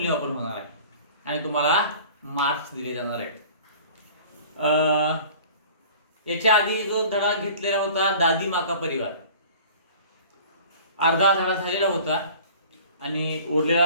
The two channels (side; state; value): both; inverted; correlation -0.45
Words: होणार आहे आणि तुम्हाला मार्क्स दिले जाणार आहेत. याच्या आधी जो धडा घेतलेला होता दादी माँ का परिवार, अर्धा धडा झालेला होता आणि उरलेला